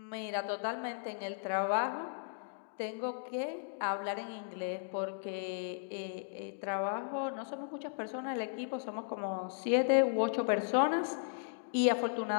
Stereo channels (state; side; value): silent; right; digital silence